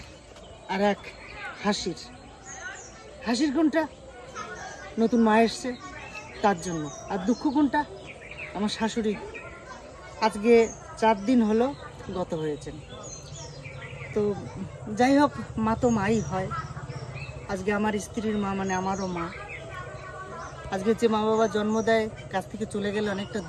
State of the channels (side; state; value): both; identical; correlation 1.00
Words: আর এক হাসির। হাসির কোনটা? নতুন মা এসছে তার জন্য। আর দুঃখ কোনটা? আমার শাশুড়ি আজকে 4 দিন হলো গত হয়েছেন। তো যাই হোক, মা তো মাই হয়। আজকে আমার স্ত্রীর মা মানে আমারও মা। আজকে যে মা বাবা জন্ম দেয় কাছ থেকে চলে গেলে অনেকটা